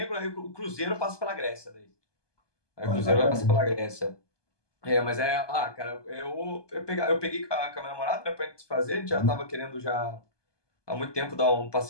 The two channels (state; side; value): late; right; 1.2 ms